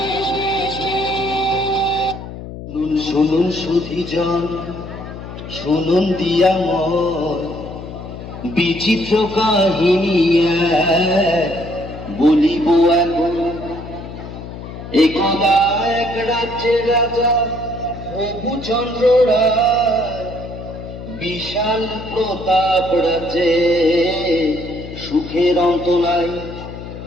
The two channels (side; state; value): left; noise; hum, 11 dB below the sound